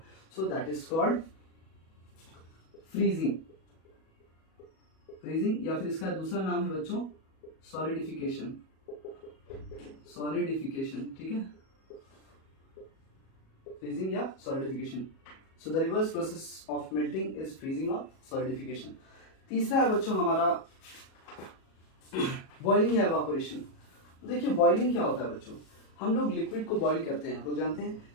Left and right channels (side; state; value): right; late; 37 ms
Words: so that is called freezing. Freezing या फिर इसका दूसरा नाम है बच्चों सॉलिडिफिकेशन, सॉलिडिफिकेशन, ठीक है, फ्रीजिंग या solidification. So the reverse process of melting is freezing और सॉलिडिफिकेशन। तीसरा है बच्चों हमारा बॉइलिंग या एवापोरेशन। देखिए बॉइलिंग क्या होता है बच्चों, हम लोग लिक्विड को बॉईल करते हैं। हम लोग जानते हैं